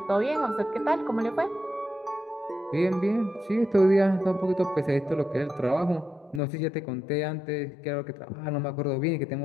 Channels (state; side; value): drops out; right; at 6.4 s